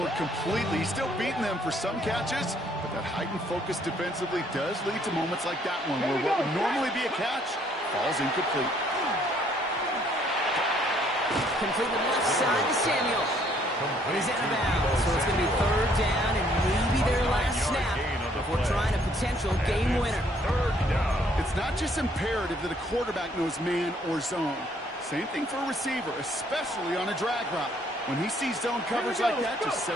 completely. He's still beating them for some catches, but that heightened focus defensively does lead to moments like that one where what would normally be a catch falls incomplete. Complete the left side to Samuel. And he's out of bounds, so it's going to be third down and maybe their last snap before trying a potential game winner. It's not just imperative that a quarterback knows man or zone. Same thing for a receiver, especially on a drag route. When he sees zone coverage like that, just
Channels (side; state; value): both; normal; correlation 0.65